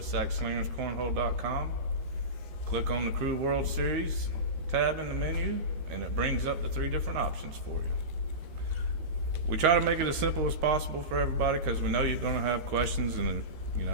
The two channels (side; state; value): left; late; 13 ms